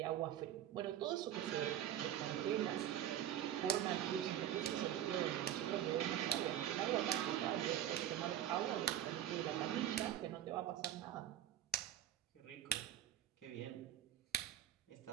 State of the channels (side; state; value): left; quieter; 11.2 dB